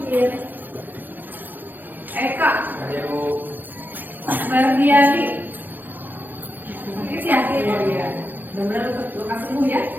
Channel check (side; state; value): left; late; 0.087 ms